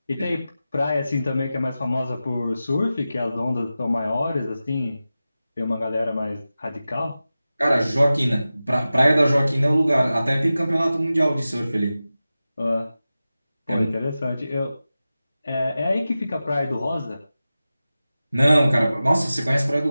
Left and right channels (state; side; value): inverted; both; correlation -0.95